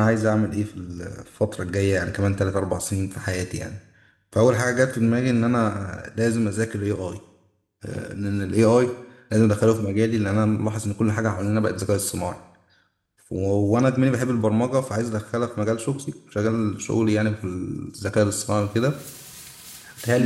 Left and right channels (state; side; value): identical; both; correlation 1.00